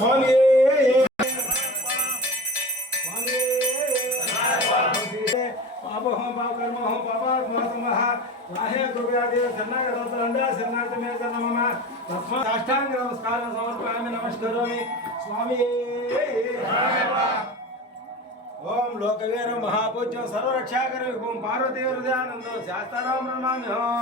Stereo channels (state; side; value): normal; both; correlation 0.31